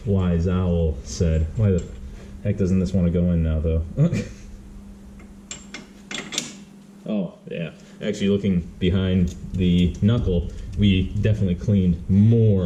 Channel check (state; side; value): identical; both; correlation 1.00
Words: wise owl said. Why the heck doesn't this want to go in now, though? Oh, yeah. Actually, looking behind the knuckle, we definitely cleaned